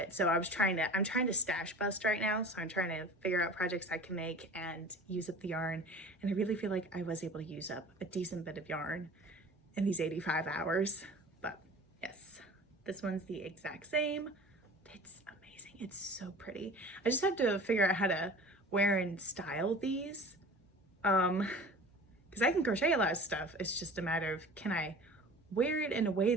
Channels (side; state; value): both; normal; correlation 0.41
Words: So I'm trying to stash bust right now. So I'm trying to figure out projects I can make and use up the yarn. And I really feel like I was able to use up a decent bit of yarn in these 85 hours. But yes, this one's the exact same. It's amazing. It's so pretty. I just have to figure out how to wear and style these. Because I can crochet a lot of stuff. It's just a matter of, can I wear it in a way